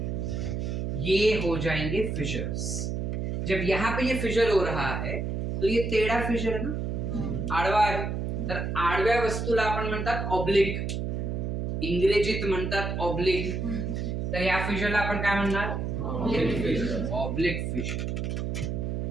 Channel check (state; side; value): noise; right; hum, 2 dB below the sound